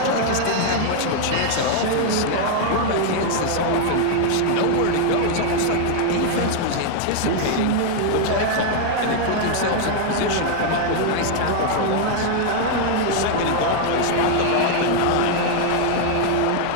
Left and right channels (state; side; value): different; both; correlation 0.00